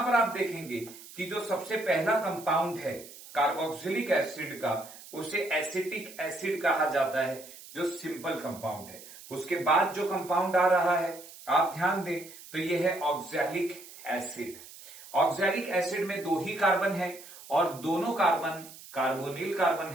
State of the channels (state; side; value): noise; right; hiss, 17 dB below the sound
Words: पर आप देखेंगे कि जो सबसे पहला कंपाउंड है कार्बोक्सिलिक एसिड का, उसे एसिटिक एसिड कहा जाता है, जो सिंपल कंपाउंड है। उसके बाद जो कंपाउंड आ रहा है आप ध्यान दें तो यह है ऑक्सैलिक एसिड। ऑक्सैलिक एसिड में दो ही कार्बन है और दोनों कार्बन कार्बोनिल कार्बन